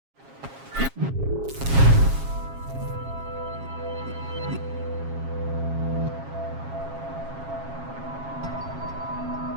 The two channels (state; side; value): late; left; 7.4 ms